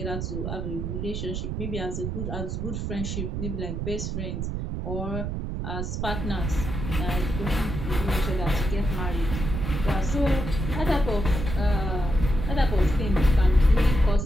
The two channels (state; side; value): noise; right; rumble, 3 dB below the sound